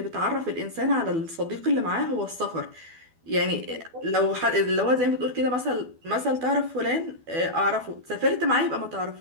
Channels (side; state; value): left; late; 12 ms